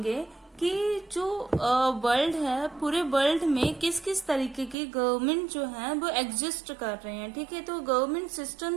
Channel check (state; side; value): drops out; left; at 4.8 s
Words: कि जो world है, पूरे वर्ल्ड में किस किस तरीके की गवर्नमेंट जो है वो एग्जिस्ट कर रहे हैं. ठीक है, तो गवर्नमेंट